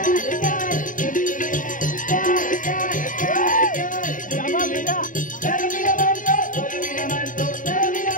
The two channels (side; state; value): right; late; 0.38 ms